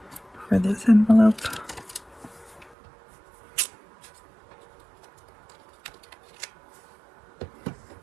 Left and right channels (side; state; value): left; drops out; at 2.8 s